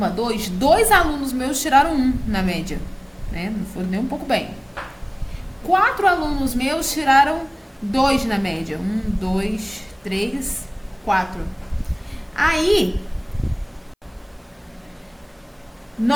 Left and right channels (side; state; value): both; identical; correlation 1.00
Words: 2, 2 alunos meus tiraram 1 na média. Né? Não foi nem um pouco bem. 4 alunos meus tiraram 2 na média. 1, 2, 3, 4. Aí,